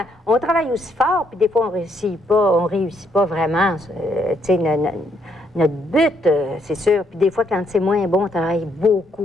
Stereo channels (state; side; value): normal; both; correlation 0.73